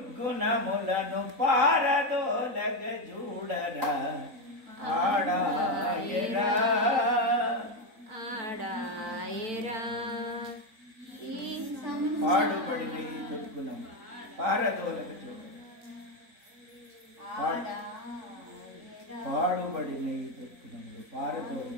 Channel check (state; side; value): late; left; 3.8 ms